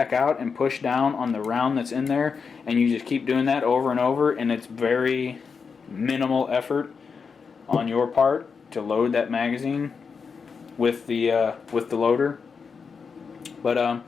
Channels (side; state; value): right; quieter; 5.6 dB